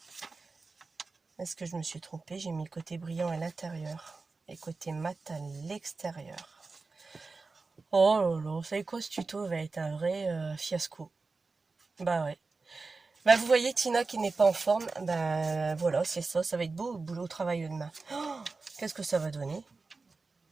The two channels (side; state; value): left; quieter; 4.0 dB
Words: Est-ce que je me suis trompée? J'ai mis le côté brillant à l'intérieur et côté mat à l'extérieur. Oh là là, vous savez quoi, ce tuto va être un vrai fiasco. Bah ouais. Bah vous voyez Tina qui n'est pas en forme, bah voilà, c'est ça, ça va être beau au boulot au travail demain. Oh, qu'est-ce que ça va donner?